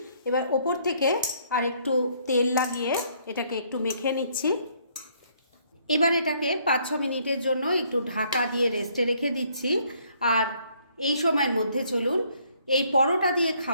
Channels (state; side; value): inverted; both; correlation -0.66